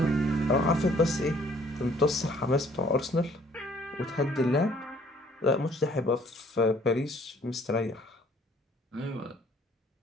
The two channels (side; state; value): both; normal; correlation 0.60